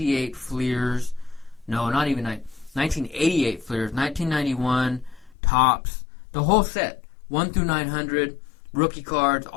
Fleers. No, not even 1988 Fleers, 1991 Tops, the whole set, 1 through 900, rookie cards,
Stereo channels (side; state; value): right; drops out; at 5.4 s